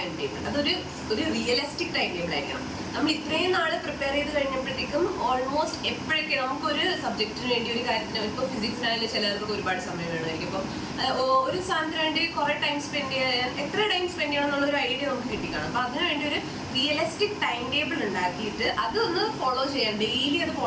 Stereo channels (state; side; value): identical; both; correlation 1.00